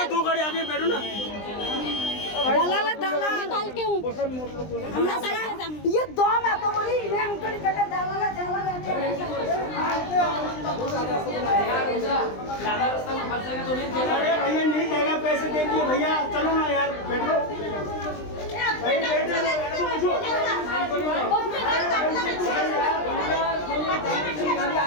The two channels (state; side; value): late; right; 20 ms